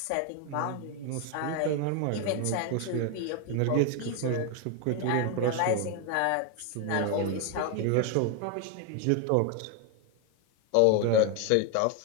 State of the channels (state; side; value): different; both; correlation 0.01